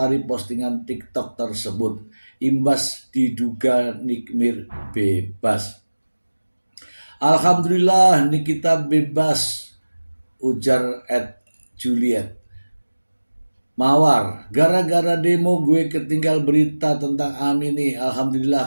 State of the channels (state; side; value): inverted; both; correlation -1.00